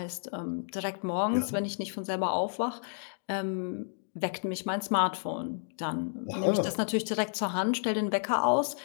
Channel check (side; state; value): right; silent; digital silence